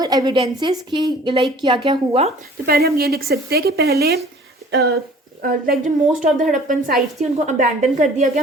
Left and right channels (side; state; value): both; normal; correlation 0.49